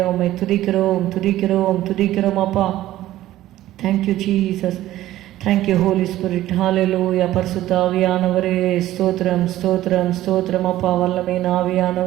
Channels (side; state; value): left; quieter; 14.5 dB